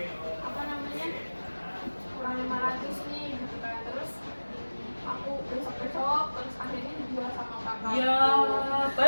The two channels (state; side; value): inverted; both; correlation -1.00